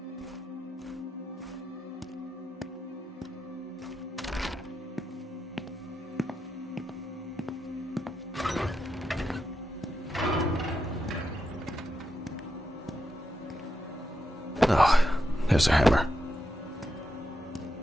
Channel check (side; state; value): both; normal; correlation 0.86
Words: Oh, there's a hammer.